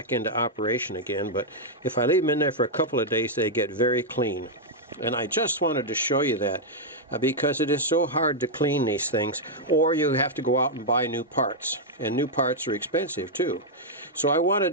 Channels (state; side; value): normal; both; correlation -0.03